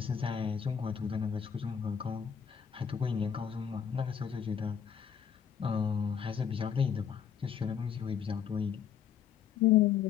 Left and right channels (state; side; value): quieter; right; 7.9 dB